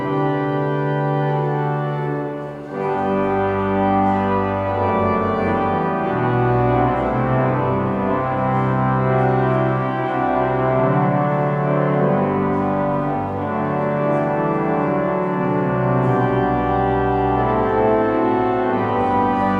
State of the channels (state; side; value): identical; both; correlation 1.00